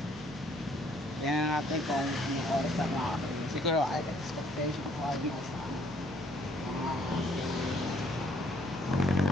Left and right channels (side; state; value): both; normal; correlation 0.63